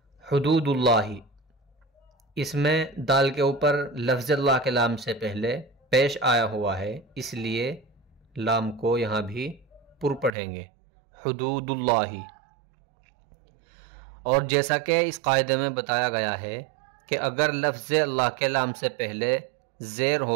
حدود اللہ، اس میں دال کے اوپر لفظ اللہ کے لام سے پہلے پیش آیا ہوا ہے، اس لیے لام کو یہاں بھی پر پڑھیں گے، حدود اللہ۔ اور جیسا کہ اس قاعدے میں بتایا گیا ہے کہ اگر لفظ اللہ کے لام سے پہلے زیر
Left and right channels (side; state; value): left; drops out; at 10.3 s